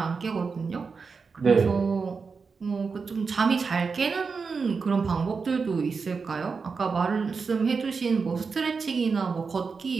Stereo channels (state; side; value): quieter; left; 5.0 dB